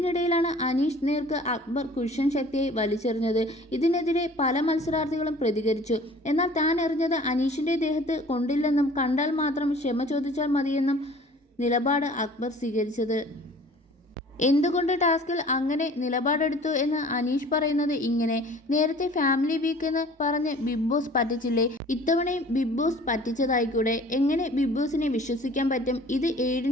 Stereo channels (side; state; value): both; normal; correlation 0.48